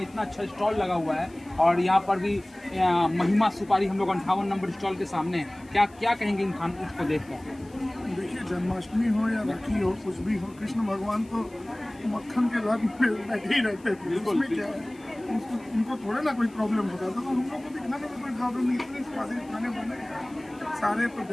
इतना अच्छा स्टॉल लगा हुआ है और यहाँ पर भी महिमा सुपारी हम लोग 58 नंबर स्टॉल के सामने है। क्या कहेंगे इन खानों को देखकर? देखिए, जन्माष्टमी हो या राखी हो, कुछ भी हो, कृष्ण भगवान तो मक्खन के रथ में बैठे ही रहते थे। उसमें क्या है, उनको थोड़ा ना कोई प्रॉब्लम होता था, तो हम लोग को भी खाने में कोई प्रॉब्लम नहीं। इतने स्वादिष्ट खाने बने सारे तो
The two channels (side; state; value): left; noise; hiss, 28 dB below the sound